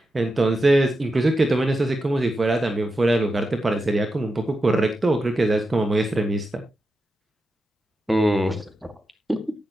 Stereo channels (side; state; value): both; normal; correlation 0.89